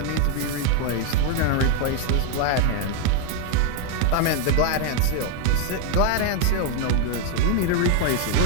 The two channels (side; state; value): both; different; correlation 0.00